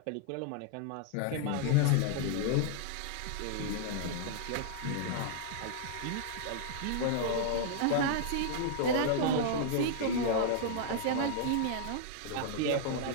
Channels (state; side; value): different; both; correlation -0.01